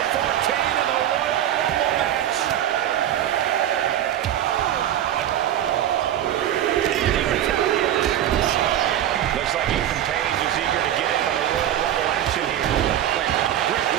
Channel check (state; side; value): quieter; left; 11.3 dB